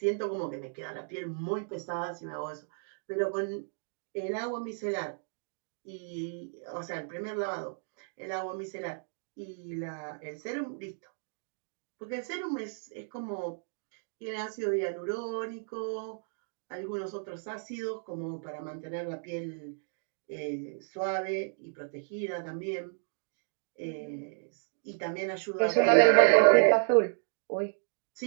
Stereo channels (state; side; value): silent; left; digital silence